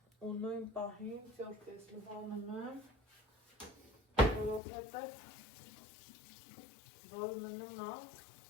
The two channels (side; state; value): right; drops out; at 4.6 s